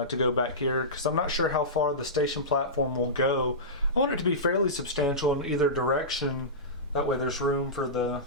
go back here, because I'm not sure how far the station platform will go. I want it to be fairly substantial in either direction, That way there's room for the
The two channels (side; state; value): both; normal; correlation -0.18